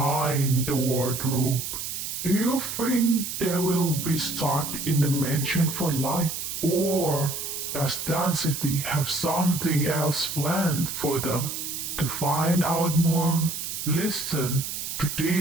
the wardrobe. Do you think they will be stuck in the mansion for life, or does Density have something else planned for them? To find out more, listen to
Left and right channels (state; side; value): noise; right; hiss, 5 dB below the sound